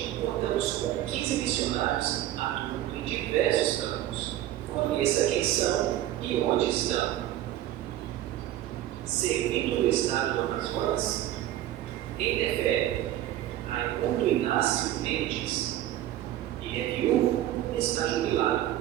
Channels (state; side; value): quieter; left; 13.2 dB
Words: contamos com 15 missionários atuando em diversos campos. Conheça quem são e onde estão. Servindo no estado do Amazonas, em Tefé, Raimundo Inácio Mendes, e é viúvo e está jubilado,